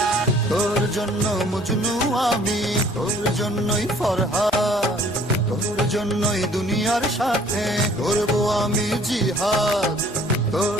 তোর জন্য মজনু আমি, তোর জন্যই ফরহাদ, তোর জন্যই দুনিয়ার সাথে করব আমি জিহাদ।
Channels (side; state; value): both; normal; correlation 0.56